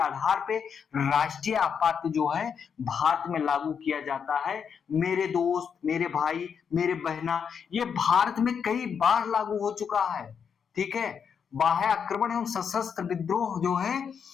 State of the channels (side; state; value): right; quieter; 7.0 dB